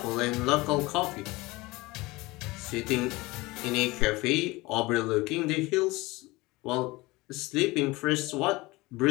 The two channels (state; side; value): quieter; right; 21.7 dB